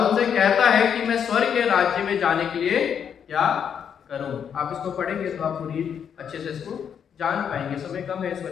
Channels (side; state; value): right; quieter; 7.9 dB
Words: उनसे कहता है कि मैं स्वर्ग के राज्य में जाने के लिए क्या करूं। आप इसको पढ़ेंगे तो आप पूरी अच्छे से इसको जान पाएंगे। समय कम है, इस